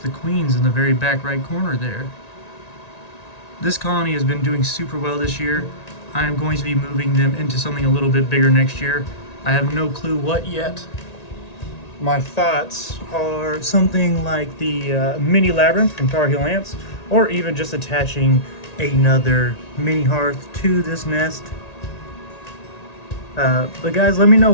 the queens in the very back right corner there. This colony has been doing super well this year. I am going to be moving them into something a little bit bigger next year. I have no clue what yet. My thoughts are something like the mini labyrinth from Tar Heel ants, or even just attaching another mini hearth to this nest. But guys, let me know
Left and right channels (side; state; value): right; late; 1.9 ms